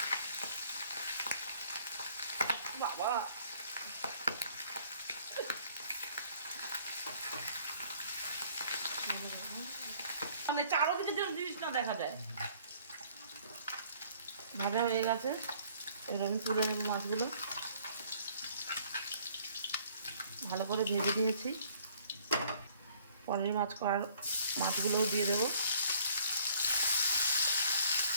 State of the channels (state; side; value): inverted; both; correlation -0.59